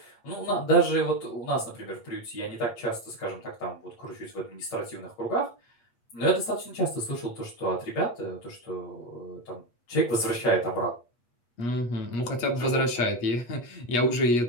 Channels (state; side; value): late; right; 8.4 ms